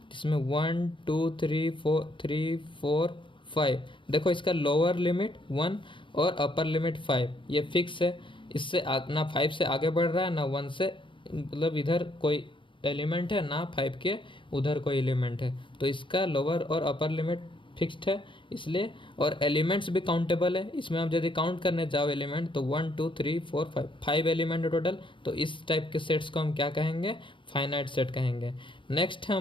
जिसमें 1 2 3 4 5, देखो इसका लोअर लिमिट 1 और अपर लिमिट 5, ये फिक्स है। इससे ना 5 से आगे बढ़ रहा है ना 1 से, मतलब इधर कोई एलिमेंट है ना 5 के उधर कोई एलिमेंट है, तो इसका लोअर और अपर लिमिट फिक्स्ड है इसलिए। और एलिमेंट्स भी काउंटेबल है, इसमें आप यदि काउंट करने जाओ एलिमेंट तो 1 2 3 4 5 एलिमेंट है टोटल। तो इस टाइप के सेट्स को हम क्या कहेंगे? फाइनाइट सेट कहेंगे। नेक्स्ट है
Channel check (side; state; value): right; late; 0.24 ms